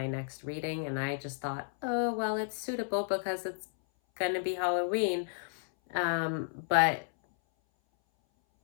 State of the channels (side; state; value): right; silent; 56 dB below the other